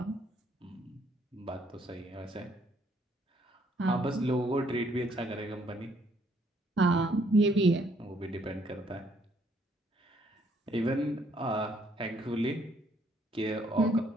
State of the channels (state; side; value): normal; both; correlation 0.67